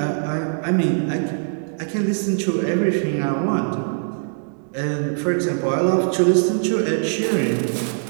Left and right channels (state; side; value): silent; left; digital silence